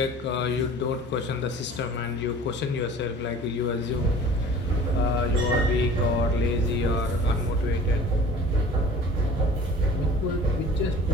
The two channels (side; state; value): both; normal; correlation 0.45